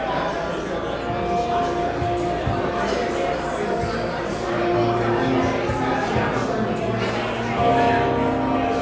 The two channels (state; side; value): identical; both; correlation 1.00